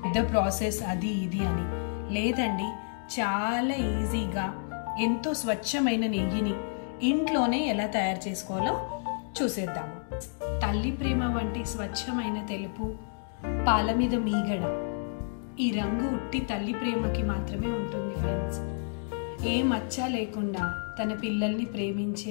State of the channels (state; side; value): silent; right; digital silence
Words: పెద్ద ప్రాసెస్ అది ఇది అని. లేదండి, చాలా ఈజీగా ఎంతో స్వచ్ఛమైన నెయ్యిని ఇంట్లోనే ఎలా తయారు చేసుకోవాలో చూసేద్దాము. తల్లి ప్రేమ వంటి స్వచ్ఛమైన తెలుపు, పాల మీద మీగడ, ఈ రంగు ఉట్టి తల్లి ప్రేమకి మాత్రమే ఉంటుంది ఫ్రెండ్స్. ఏ మచ్చ లేకుండా తన పిల్లల్ని